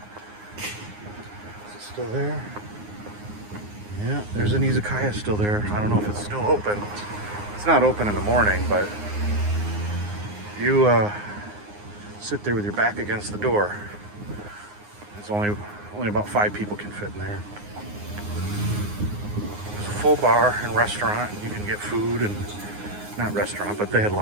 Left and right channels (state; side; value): late; left; 9.7 ms